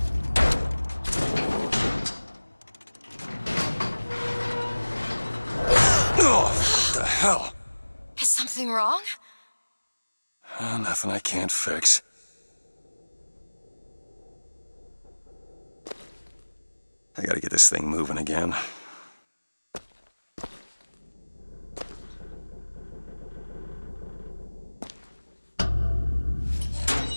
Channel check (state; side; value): inverted; both; correlation -1.00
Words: Oh, what the hell? Is something wrong? Nothing I can't fix. I gotta get this thing moving again.